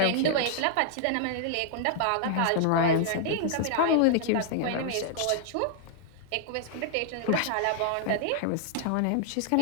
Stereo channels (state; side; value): different; both; correlation -0.01